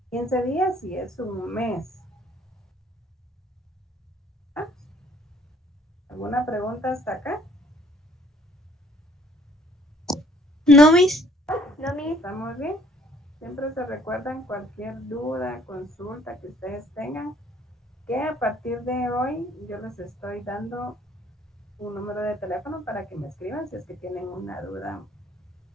15 días y es un mes. ¿Ah? ¿Alguna pregunta hasta acá? No, Miss. ¿Estamos bien? Siempre se recuerdan cualquier duda, consulta que ustedes tengan, que a partir de hoy yo les estoy dando un número de teléfono para que me escriban si es que tienen una duda.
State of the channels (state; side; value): normal; both; correlation 0.60